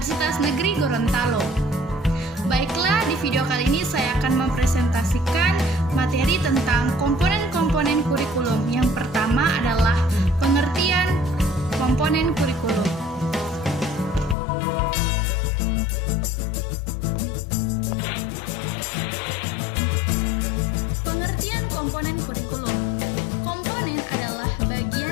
Negeri Gorontalo. Baiklah, di video kali ini saya akan mempresentasikan materi tentang komponen-komponen kurikulum. Yang pertama adalah pengertian komponen kurikulum. Pengertian komponen kurikulum. Komponen adalah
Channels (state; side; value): drops out; right; at 14.4 s